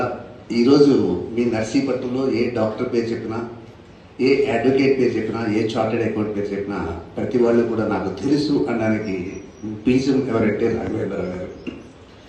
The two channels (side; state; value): both; identical; correlation 1.00